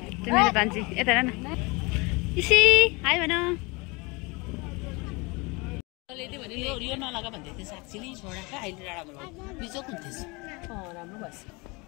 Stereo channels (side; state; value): right; quieter; 26.9 dB